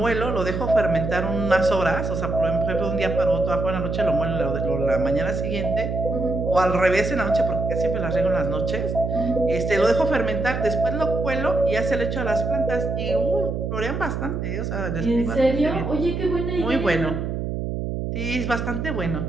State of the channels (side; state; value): right; noise; hum, 3 dB below the sound